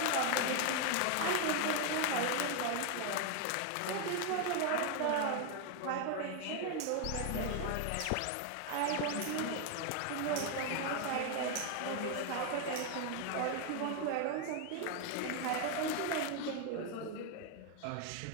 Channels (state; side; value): different; both; correlation 0.01